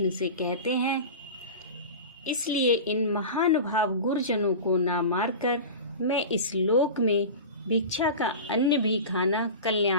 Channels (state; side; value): inverted; both; correlation -0.30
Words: से कहते हैं, इसलिए इन महानुभाव गुरुजनों को ना मारकर मैं इस लोक में भिक्षा का अन्न भी खाना